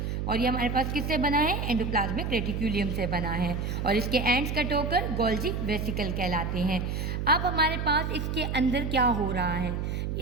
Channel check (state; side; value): noise; right; hum, 2 dB below the sound